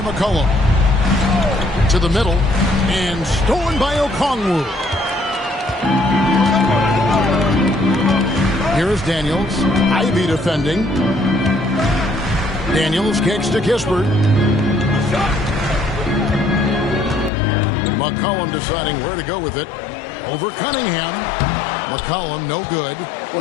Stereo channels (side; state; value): right; drops out; at 17.3 s